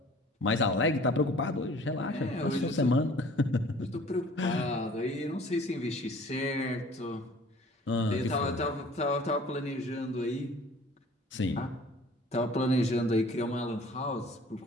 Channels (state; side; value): normal; both; correlation 0.50